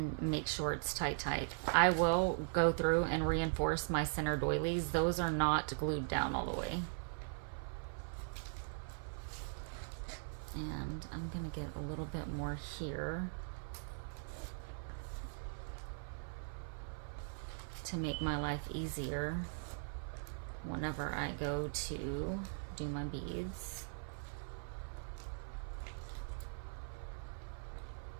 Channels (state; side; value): silent; left; 51 dB below the other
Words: make sure it's tight. I will go through and reinforce my center doilies. Those are not glued down all the way. And I'm gonna get a little bit more here to make my life easier whenever I go to do my beads.